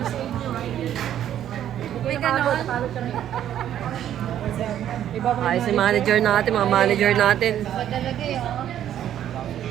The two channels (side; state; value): left; quieter; 10.9 dB